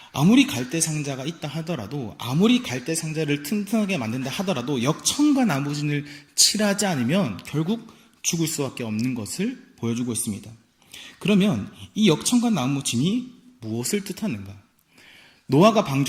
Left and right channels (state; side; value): identical; both; correlation 1.00